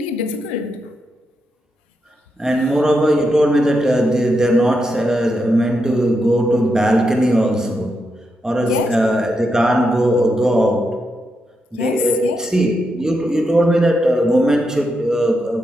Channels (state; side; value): normal; both; correlation 0.84